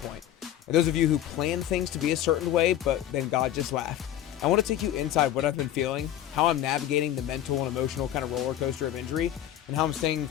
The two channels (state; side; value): quieter; right; 11.9 dB